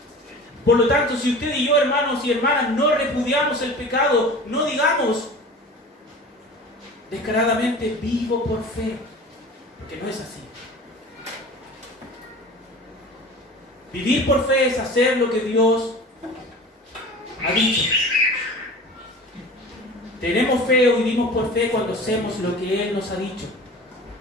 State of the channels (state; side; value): normal; both; correlation 0.38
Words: Por lo tanto, si usted y yo, hermanos y hermanas, no repudiamos el pecado, no digamos descaradamente vivo por fe, porque no es así. Vivir por fe es hacer lo que Dios ha dicho. Tenemos fe o vivimos por fe cuando hacemos lo que Él nos ha dicho.